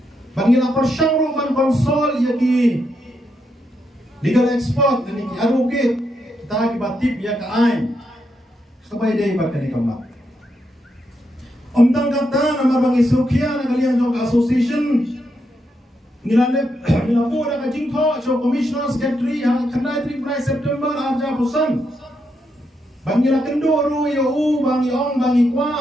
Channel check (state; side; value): normal; both; correlation 0.81